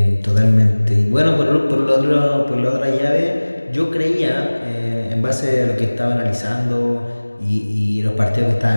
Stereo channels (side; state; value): both; inverted; correlation -1.00